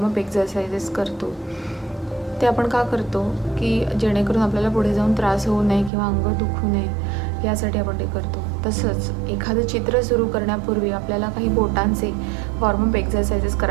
एक्झरसाइजेस करतो, ते आपण का करतो की जेणेकरून आपल्याला पुढे जाऊन त्रास होऊ नये किंवा अंग दुखू नये यासाठी आपण ते करतो. तसंच एखादं चित्र सुरू करण्यापूर्वी आपल्याला काही बोटांचे वॉर्मअप एक्झरसाइजेस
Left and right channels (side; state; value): left; drops out; at 5.9 s